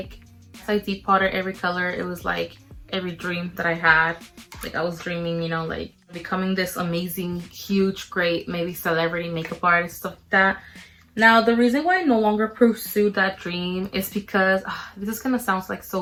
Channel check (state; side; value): identical; both; correlation 1.00